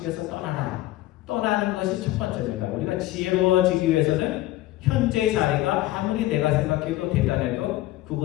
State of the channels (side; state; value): right; quieter; 16.4 dB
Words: 떠나라. 떠나는 것이 첫 번째입니다. 우리가 지혜로워지기 위해서는 현재의 자리가 아무리 내가 생각해도 대단해도